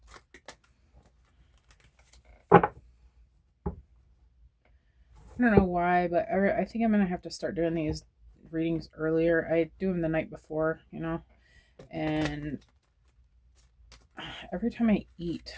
I don't know why, but I think I'm going to have to start doing these readings earlier. I do them the night before, you know, and every time I eat,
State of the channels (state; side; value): identical; both; correlation 1.00